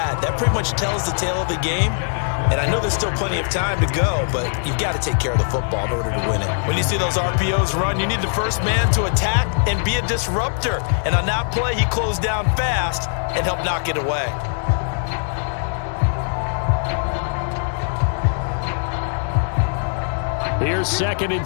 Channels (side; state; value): right; silent; 65 dB below the other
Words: that pretty much tells the tale of the game. And I know there's still plenty of time to go, but you've got to take care of the football in order to win it. When you see those RPOs run, you need the first man to attack and be a disruptor. And on that play, he closed down fast and helped knock it away. Here's 2nd and